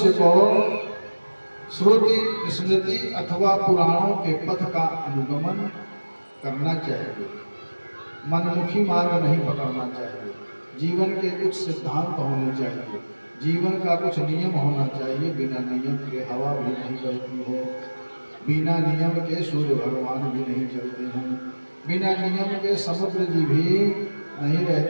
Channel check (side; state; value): both; inverted; correlation -1.00